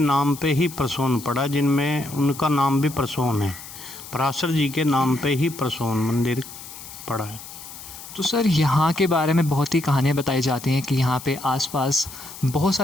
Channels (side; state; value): left; noise; hiss, 14 dB below the sound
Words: पे ही प्रसून पड़ा, जिनमें उनका नाम भी प्रसून है। पराशर जी के नाम पे ही प्रसून मंदिर पड़ा है। तो सर, यहाँ के बारे में बहुत ही कहानियाँ बताई जाती हैं कि यहाँ पे आसपास बहुत